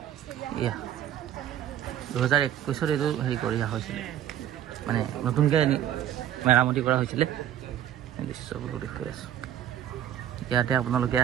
এয়া 2021 এইটো হেৰি কৰি অহা হৈছিলে, মানে নতুনকৈ মেৰামতি কৰা হৈছিলে। দৃশ্যবোৰো দেখুৱাই আছোঁ। ইয়াতে আপোনালোকে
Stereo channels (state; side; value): quieter; left; 10.9 dB